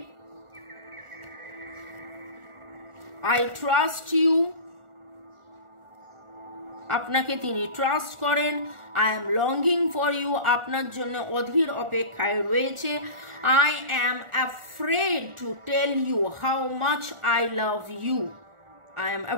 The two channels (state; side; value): late; left; 1.4 ms